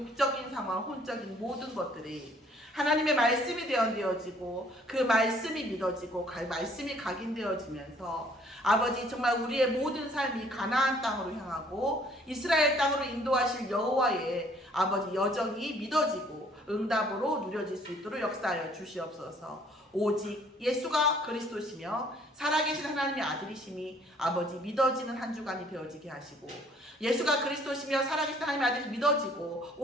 상황, 혼적인 모든 것들이 하나님의 말씀이 되어지고 그 말씀이 믿어지고 말씀이 각인되어지면서 아버지 정말 우리의 모든 삶이 가나안 땅으로 향하고 이스라엘 땅으로 인도하실 여호와의 아버지 여정이 믿어지고 응답으로 누려질 수 있도록 역사하여 주시옵소서. 오직 예수가 그리스도시며 살아계신 하나님의 아들이심이 아버지 믿어지는 한 주간이 되어지게 하시고 예수가 그리스도시며 살아계신 하나님의 아들이 믿어지고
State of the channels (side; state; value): both; normal; correlation 0.59